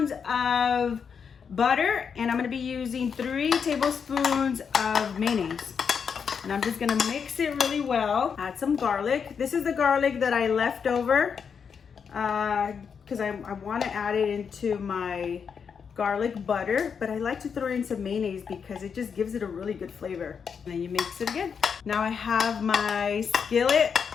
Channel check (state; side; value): quieter; right; 6.6 dB